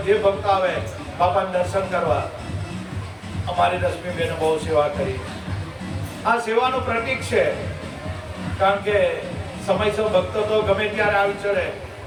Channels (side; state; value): both; identical; correlation 1.00